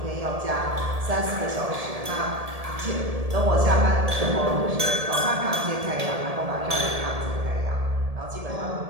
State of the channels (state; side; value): late; left; 1.7 ms